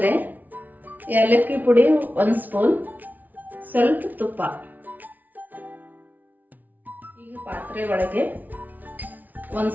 ಏಲಕ್ಕಿ ಪುಡಿ 1 ಸ್ಪೂನ್, ಸ್ವಲ್ಪ ತುಪ್ಪ. ಈಗ ಪಾತ್ರೆ ಒಳಗೆ 1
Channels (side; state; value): left; late; 0.080 ms